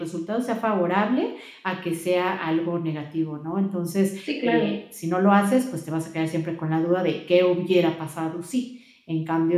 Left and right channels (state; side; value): identical; both; correlation 1.00